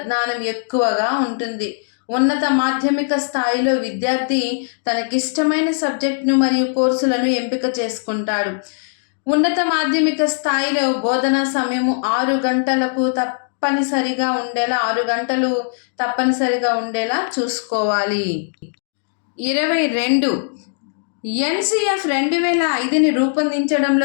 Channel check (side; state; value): right; silent; digital silence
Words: జ్ఞానం ఎక్కువగా ఉంటుంది. ఉన్నత మాధ్యమిక స్థాయిలో విద్యార్థి తనకిష్టమైన సబ్జెక్టును మరియు కోర్సులను ఎంపిక చేసుకుంటాడు. ఉన్నత మాధ్యమిక స్థాయిలో బోధనా సమయము 6 గంటలకు తప్పనిసరిగా ఉండేలా 6 గంటలు తప్పనిసరిగా ఉండేలా చూసుకోవాలి. 22 ఎన్సిఎఫ్ 2005ని